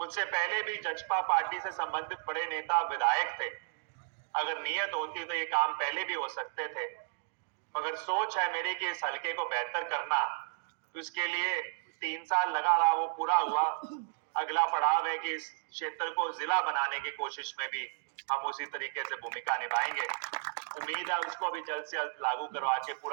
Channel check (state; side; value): silent; left; digital silence